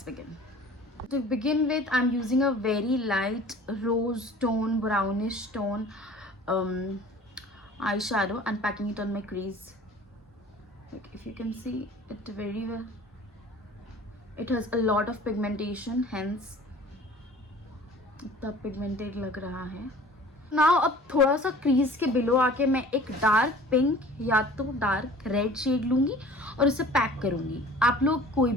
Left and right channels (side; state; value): both; normal; correlation 0.46